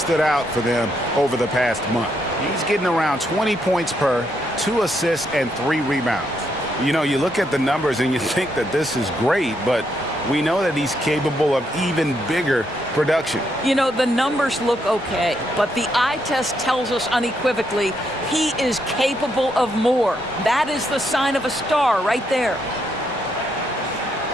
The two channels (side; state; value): both; normal; correlation 0.77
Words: out for them over the past month. He's getting around 20 points per, 2 assists, and 3 rebounds. You know, you look at the numbers and you think that this is great, but we know that he's capable of even bigger production. You know, the numbers look okay, but the eye test tells us unequivocally he is capable of more. That is the sign of a star right there.